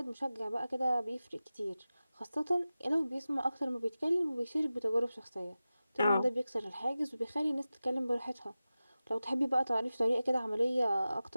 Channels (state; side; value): inverted; both; correlation -0.95